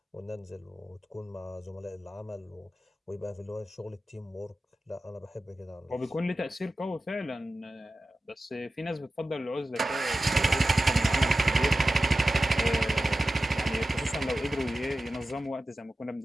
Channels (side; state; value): both; normal; correlation 0.94